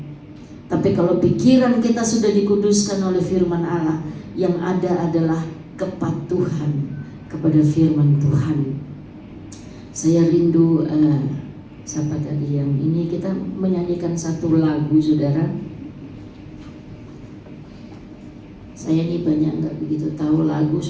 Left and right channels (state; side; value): identical; both; correlation 1.00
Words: Tapi kalau pikiran kita sudah dikuduskan oleh firman Allah, yang ada adalah kepatuhan kepada firman Tuhan. Saya rindu siapa tadi yang ini, kita menyanyikan satu lagu saudara. Saya ini banyak nggak begitu tahu lagu,